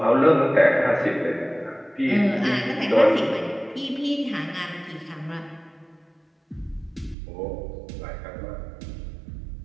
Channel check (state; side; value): drops out; left; at 7.2 s